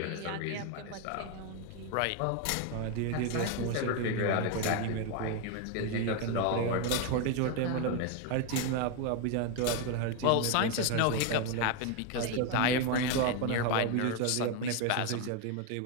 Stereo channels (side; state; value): both; different; correlation 0.01